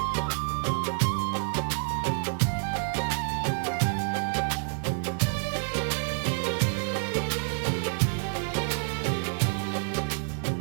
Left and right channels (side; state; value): left; silent; 59 dB below the other